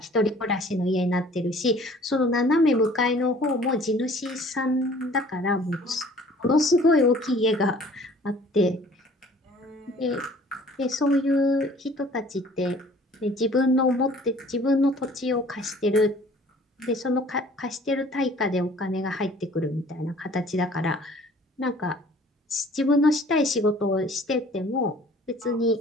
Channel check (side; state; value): both; normal; correlation 0.52